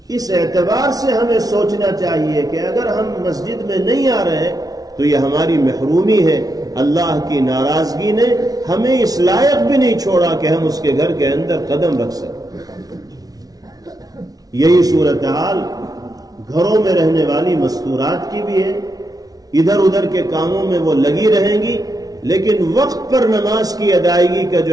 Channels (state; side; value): late; left; 0.18 ms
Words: اس اعتبار سے ہمیں سوچنا چاہیے کہ اگر ہم مسجد میں نہیں آ رہے تو یہ ہماری محرومی ہے۔ اللہ کی ناراضگی نے ہمیں اس لائق بھی نہیں چھوڑا کہ ہم اس کے گھر کے اندر قدم رکھ سکیں۔ یہی صورتحال گھروں میں رہنے والی مستورات کی بھی ہے۔ ادھر ادھر کے کاموں میں وہ لگی رہیں گی، لیکن وقت پر نماز کی ادائیگی کا